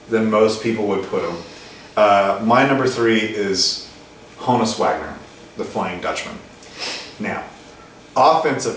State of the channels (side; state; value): both; identical; correlation 1.00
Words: than most people would put him. My number 3 is Honus Wagner, the Flying Dutchman. Now,